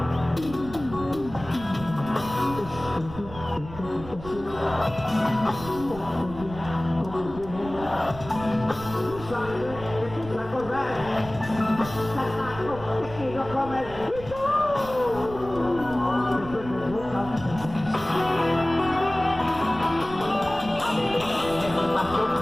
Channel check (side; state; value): right; noise; rumble, 14 dB below the sound